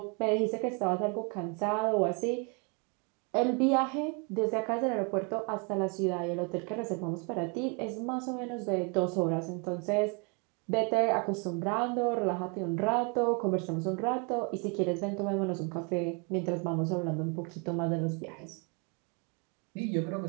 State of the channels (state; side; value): quieter; left; 33.2 dB